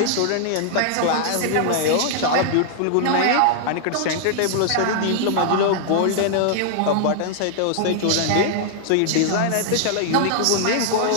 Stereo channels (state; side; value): different; both; correlation -0.01